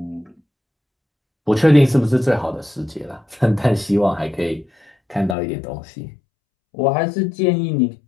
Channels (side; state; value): right; drops out; at 5.4 s